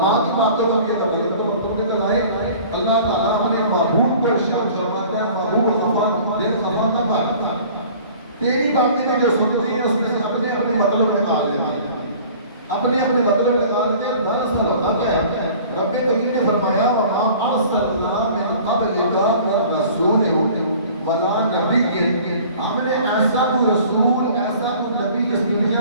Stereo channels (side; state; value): both; inverted; correlation -0.48